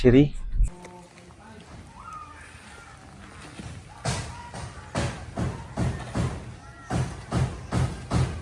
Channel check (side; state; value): both; identical; correlation 1.00